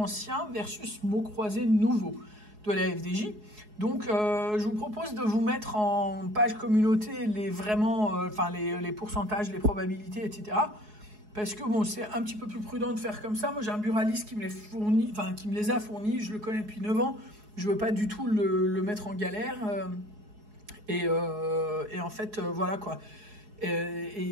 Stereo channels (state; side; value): late; left; 4.7 ms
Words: versus mots croisés nouveaux de la FDJ. Donc, je vous propose de vous mettre en page communauté les pourcentages, les probabilités, etc. Parce que bon, c'est un petit peu plus prudent de faire comme ça. Moi, j'ai un buraliste qui me les a fournis. Je le connais depuis 9 ans. Je veux pas du tout le mettre en galère. Et en fait, voilà quoi.